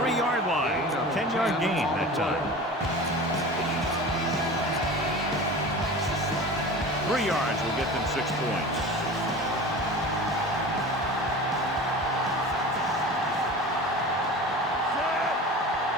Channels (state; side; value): normal; both; correlation 0.35